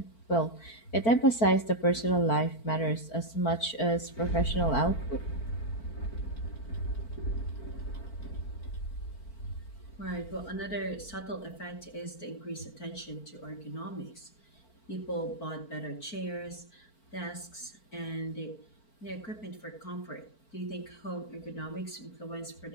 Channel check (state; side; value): late; right; 4.5 ms